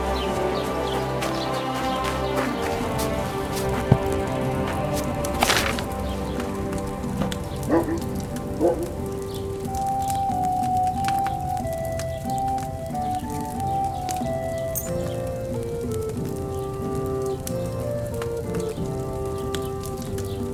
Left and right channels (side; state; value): both; identical; correlation 1.00